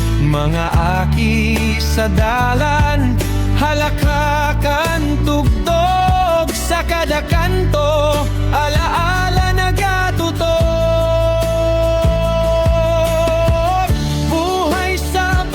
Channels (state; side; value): identical; both; correlation 1.00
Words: Mga aki sa dalan, halakakan tugtog, sa kada kanto alaala nagatutok. Buhay sa